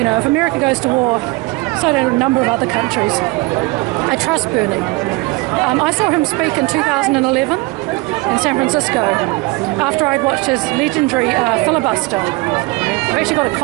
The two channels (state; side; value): quieter; left; 24.0 dB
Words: know, if America goes to war, so do a number of other countries. I trust Bernie. I saw him speak in 2011 in San Francisco after I'd watched his legendary filibuster. I've actually got a